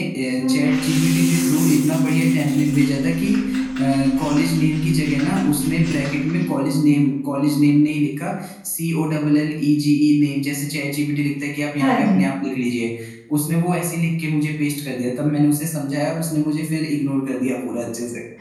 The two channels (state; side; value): identical; both; correlation 1.00